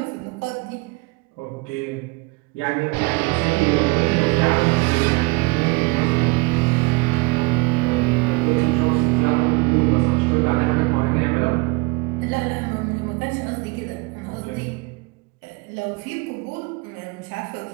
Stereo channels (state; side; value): quieter; left; 26.1 dB